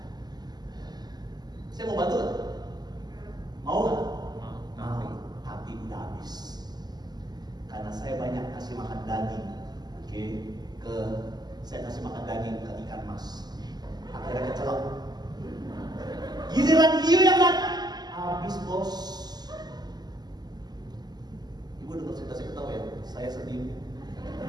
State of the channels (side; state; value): left; late; 0.20 ms